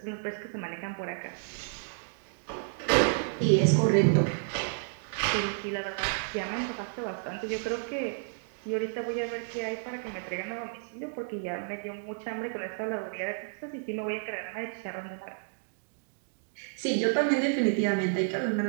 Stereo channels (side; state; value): left; silent; digital silence